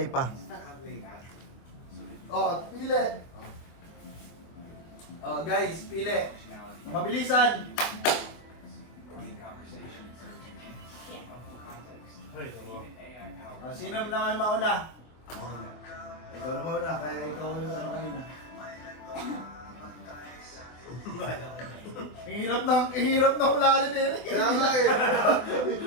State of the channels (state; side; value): late; right; 24 ms